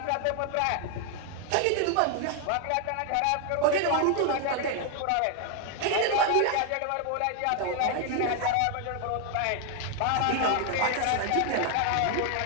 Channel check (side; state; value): both; different; correlation 0.00